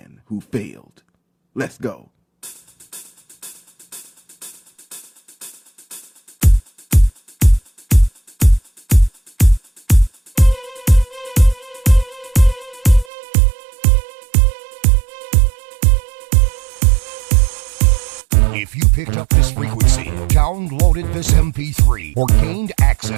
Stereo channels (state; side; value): drops out; left; at 13.1 s